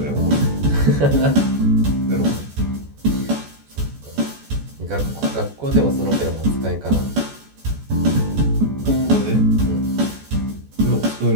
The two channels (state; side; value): late; left; 14 ms